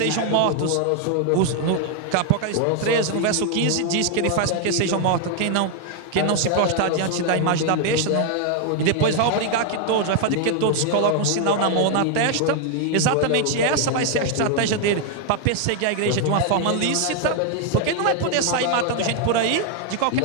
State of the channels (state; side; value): different; both; correlation 0.00